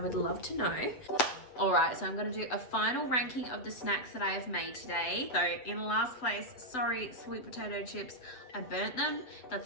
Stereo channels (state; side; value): late; right; 7.9 ms